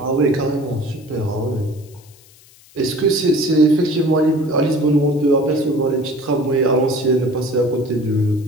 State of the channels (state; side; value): noise; left; hiss, 26 dB below the sound